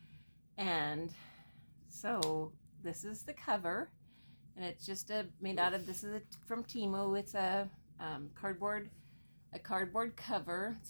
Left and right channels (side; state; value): both; inverted; correlation -1.00